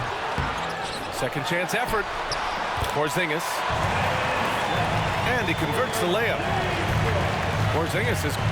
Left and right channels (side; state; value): both; identical; correlation 1.00